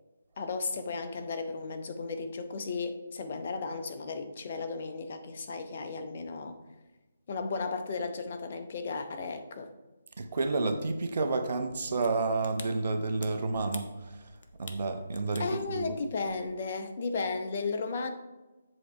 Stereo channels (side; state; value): both; inverted; correlation -0.74